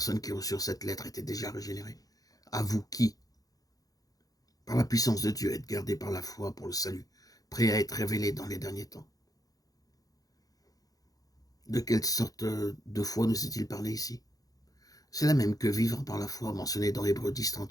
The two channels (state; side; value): late; right; 0.18 ms